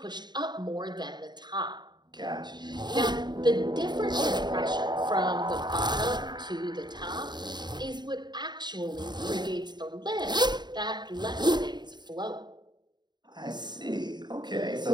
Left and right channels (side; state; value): left; late; 0.21 ms